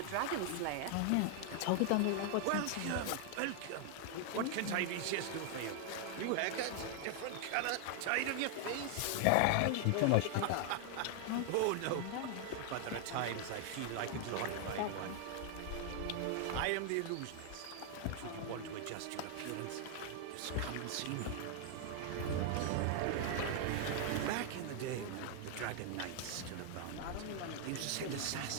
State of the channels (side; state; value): both; different; correlation 0.00